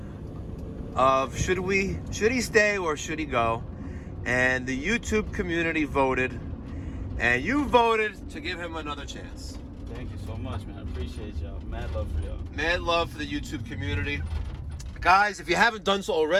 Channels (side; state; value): both; identical; correlation 1.00